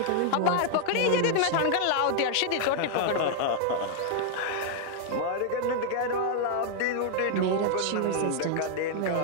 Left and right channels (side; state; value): both; different; correlation 0.00